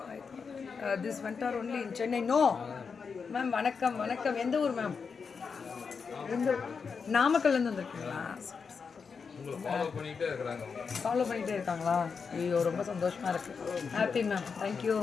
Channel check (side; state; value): right; quieter; 5.6 dB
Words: This vendor only in Chennai. No ma'am. வணக்கம். எந்த ஊர் மேம்? நாமக்கல்லேருந்து வந்திருக்கீங்களா? ஃபாலோ பண்ணிகிட்டே இருக்காங்களா? ஐயோ, ரொம்ப சந்தோஷமாக இருக்குது. Happy ma'am, thank you.